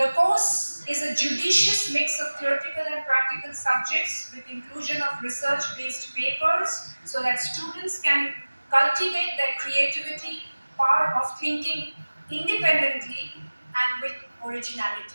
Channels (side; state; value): both; inverted; correlation -1.00